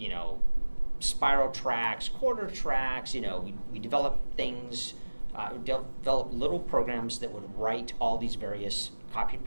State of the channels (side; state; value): both; inverted; correlation -1.00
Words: spiral tracks, quarter tracks. We developed things, developed little programs that would write all these various copy